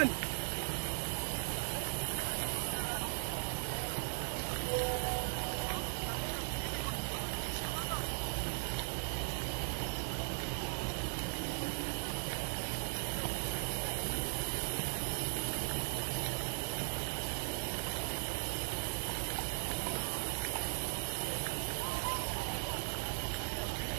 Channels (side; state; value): left; silent; digital silence